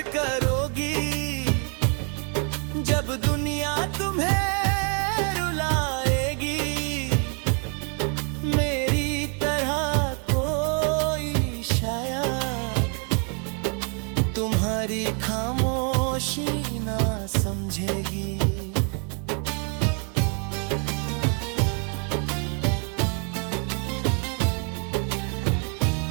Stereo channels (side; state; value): left; quieter; 38.9 dB